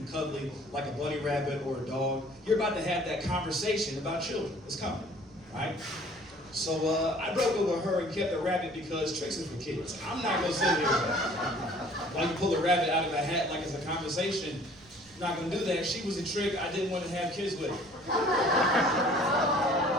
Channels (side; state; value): right; noise; rumble, 27 dB below the sound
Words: cuddly, like a bunny rabbit or a dog, you're about to have that conversation about children. It's coming, right? So I broke up with her and kept the rabbit because tricks is for kids. I'm not going to sit here while you pull a rabbit out of a hat like it's a conversation. I'm not going to do that. She was a trick I didn't want to have kids with.